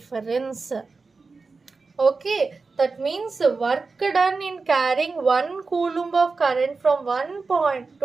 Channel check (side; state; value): left; quieter; 4.2 dB